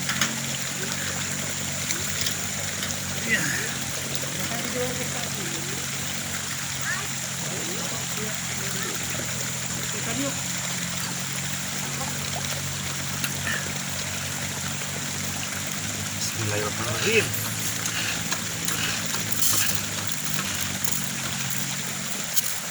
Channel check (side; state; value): both; identical; correlation 1.00